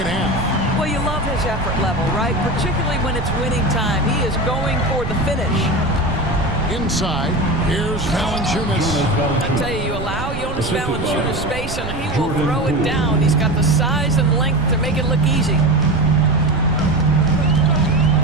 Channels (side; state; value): right; noise; rumble, 8 dB below the sound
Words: half. Well, you love his effort level, right? Particularly when it's winning time. He is going for the finish. Inside, here's Valanciunas. I tell you, you allow Jonas Valanciunas space and he will throw it down. He's got the size and length to make it look easy.